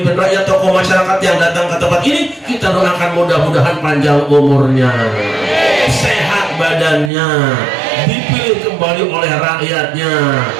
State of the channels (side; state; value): left; drops out; at 7.1 s